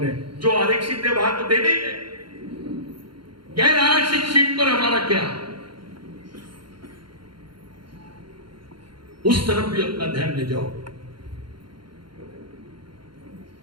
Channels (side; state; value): left; late; 0.73 ms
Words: है। जो आरक्षित है वहां तो देने ही है, गैर आरक्षित सीट पर हमारा क्या, उस तरफ भी अपना ध्यान ले जाओ।